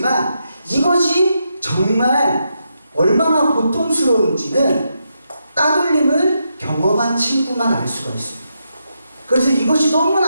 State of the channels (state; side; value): inverted; both; correlation -0.83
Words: 이것이 정말 얼마나 고통스러운지는 따돌림을 경험한 친구만 알 수가 있습니다. 그래서 이것이